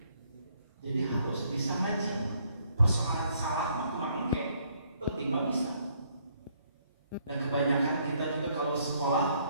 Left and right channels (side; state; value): both; inverted; correlation -0.68